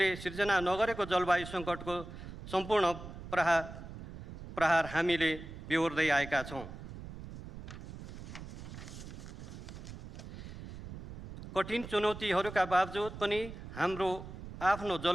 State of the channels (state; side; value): noise; right; rumble, 12 dB below the sound